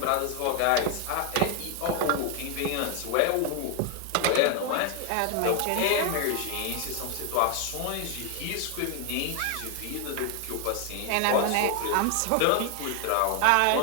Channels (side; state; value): both; different; correlation 0.00